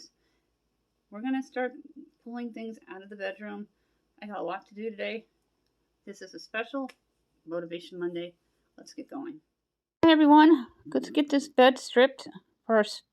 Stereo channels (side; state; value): both; identical; correlation 1.00